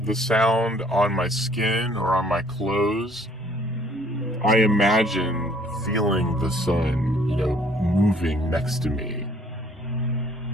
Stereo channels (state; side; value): normal; both; correlation 0.60